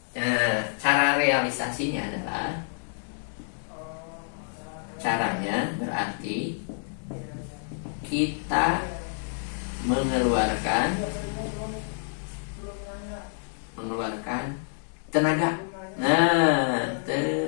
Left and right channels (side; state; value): right; silent; digital silence